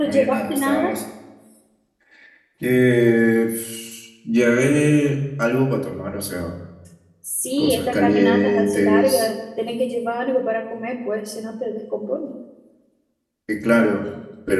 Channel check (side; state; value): both; identical; correlation 1.00